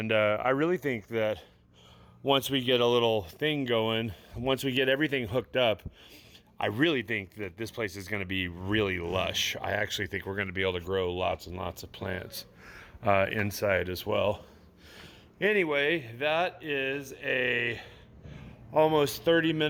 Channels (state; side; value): identical; both; correlation 1.00